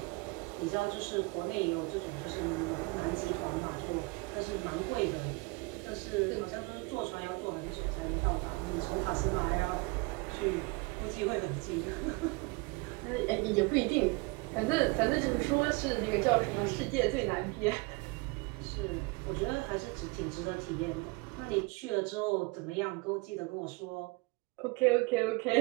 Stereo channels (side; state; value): left; quieter; 26.5 dB